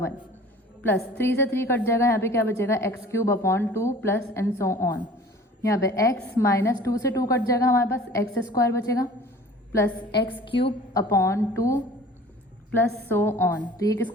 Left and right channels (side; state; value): both; normal; correlation 0.45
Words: 1 प्लस 3 से 3 कट जाएगा, यहाँ पे क्या बचेगा x cube upon 2 plus and so on. यहाँ पे x माइनस 2 से 2 कट जाएगा, हमारे पास एक्स स्क्वायर बचेगा plus x cube upon 2 plus so on. तो ये